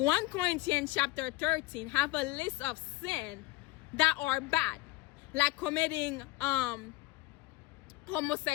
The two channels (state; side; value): quieter; right; 20.0 dB